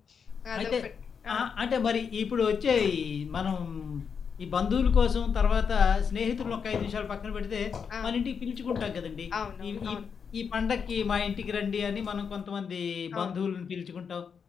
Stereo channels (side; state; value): right; quieter; 6.5 dB